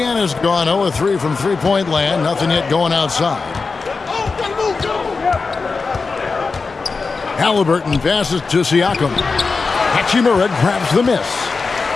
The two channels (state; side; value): quieter; right; 4.4 dB